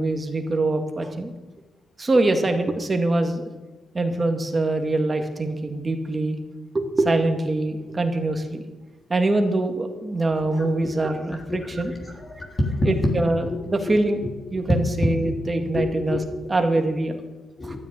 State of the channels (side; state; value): both; normal; correlation 0.90